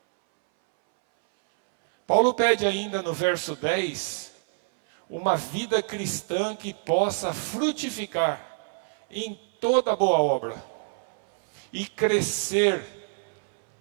Paulo pede ainda no verso 10, uma vida cristã que possa frutificar em toda boa obra e crescer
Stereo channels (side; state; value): left; silent; 61 dB below the other